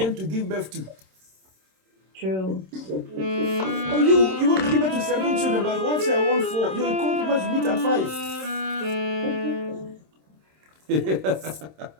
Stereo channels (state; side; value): late; left; 26 ms